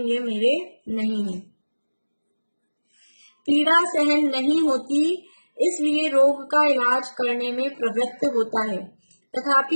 ये मेरे नहीं है। पीड़ा सहन नहीं होती, इसलिए रोग का इलाज करने में प्रवृत्त होता है,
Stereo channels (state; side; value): inverted; both; correlation -1.00